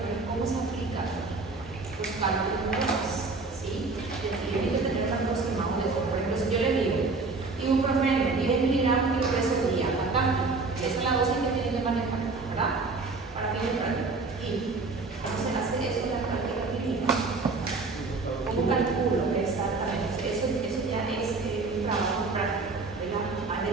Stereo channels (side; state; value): left; quieter; 3.9 dB